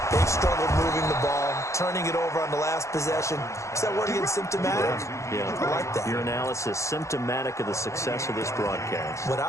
they've struggled moving the ball, turning it over on the last possession. Is that word again, symptomatic? Yeah. I like that. Your analysis, symptomatic of the success of this broadcast. What I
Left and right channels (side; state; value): right; late; 0.14 ms